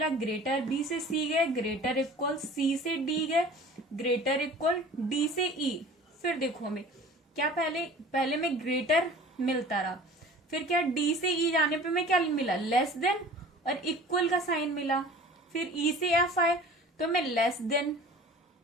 ग्रेटर। बी से सी गए ग्रेटर इक्वल, सी से डी गए ग्रेटर इक्वल, डी से ई। फिर देखो हमें क्या पहले में ग्रेटर मिलता रहा, फिर क्या डी से ई जाने पे हमें क्या मिला, लेस देन और इक्वल का साइन मिला। फिर ई से एफ आए तो हमें लेस देन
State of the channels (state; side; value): normal; both; correlation 0.43